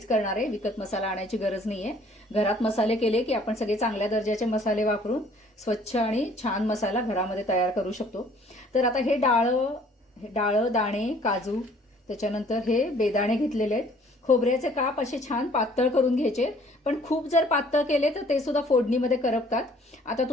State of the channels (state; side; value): normal; both; correlation 0.57